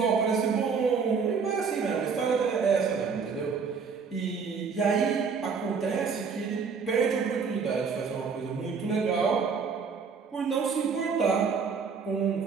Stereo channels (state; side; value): quieter; left; 5.6 dB